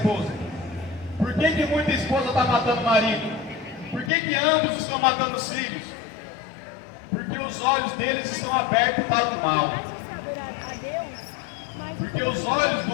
Por que muita esposa está matando o marido? Por que ambos estão matando os filhos? Porque os olhos deles estão abertos para o mal. Porque os olhos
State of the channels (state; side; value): drops out; right; at 4.1 s